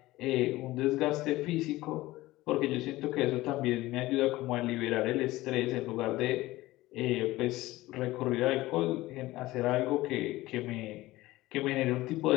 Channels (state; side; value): quieter; right; 18.1 dB